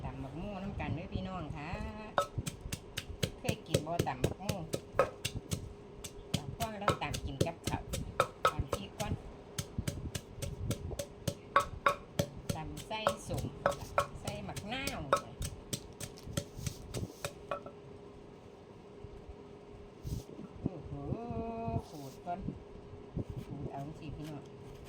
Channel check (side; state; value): both; identical; correlation 1.00